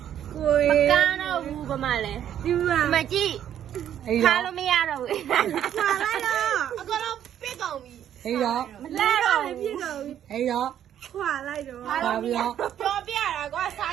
မကားတော့ဘူးဘာမှလဲဒီမှာကြည့် အဲ့ ခါ တော့ လို့မရတော့ဘူးခွာလိုက်တော့အကတော့ပြစ်ကုန်ပြီ အဲ့တော့ မလဲတော့ပြစ်ကုန်ပြီ အဲ့တော့ ခွာလိုက်တော့ ပါပြီးတော့ ပြောပြတာကွာစာ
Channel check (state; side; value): quieter; left; 10.3 dB